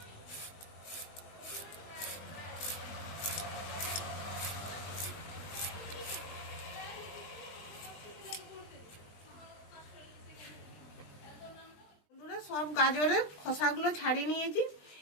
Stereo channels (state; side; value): late; right; 20 ms